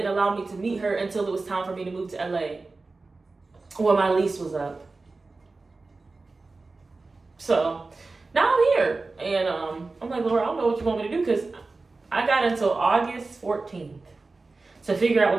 allow me to meet her until it was time for me to move to LA when my lease was up. So now I'm here, and I'm like, Lord, I don't know what you want me to do, because I got until August 14th to figure out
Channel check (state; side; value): quieter; left; 3.6 dB